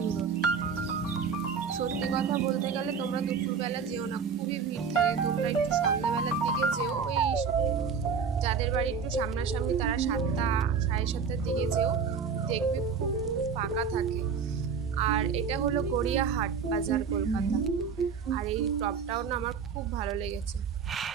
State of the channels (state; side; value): quieter; left; 6.1 dB